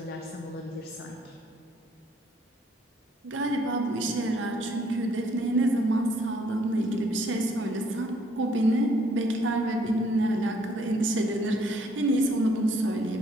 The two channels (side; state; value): both; normal; correlation 0.65